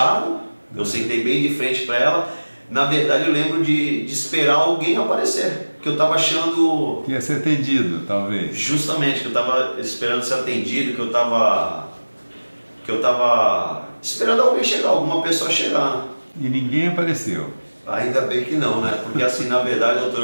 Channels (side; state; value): both; inverted; correlation -1.00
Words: Eu sentei bem de frente para ela. Na verdade eu lembro de esperar alguém aparecer, que eu estava achando... Que ia ser atendido, talvez. Justamente, que eu estava esperando ser atendido, que eu estava esperando alguém chegar, alguma pessoa chegar. E ninguém apareceu? Ainda bem que não, né? Porque assim, na verdade, doutor,